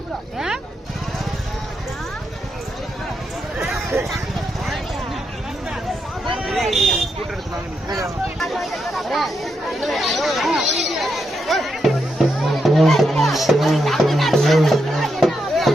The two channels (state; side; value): normal; both; correlation 0.82